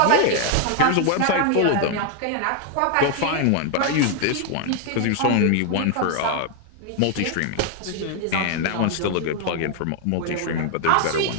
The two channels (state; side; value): different; both; correlation 0.00